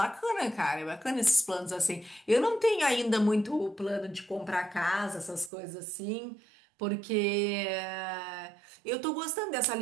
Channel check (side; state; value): left; drops out; at 5.5 s